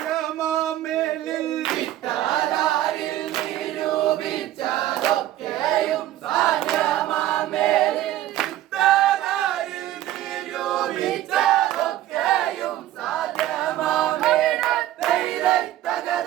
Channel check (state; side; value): quieter; left; 13.7 dB